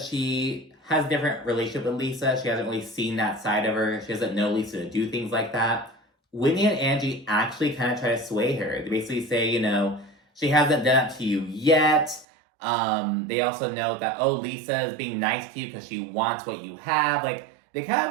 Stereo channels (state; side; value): drops out; left; at 12.2 s